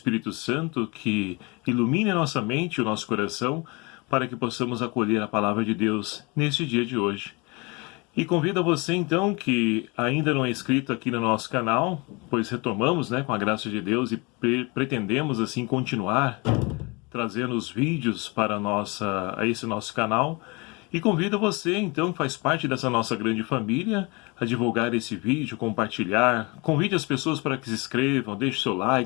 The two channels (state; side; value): quieter; right; 27.9 dB